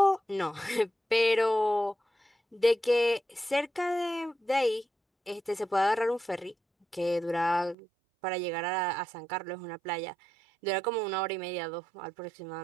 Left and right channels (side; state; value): left; drops out; at 7.8 s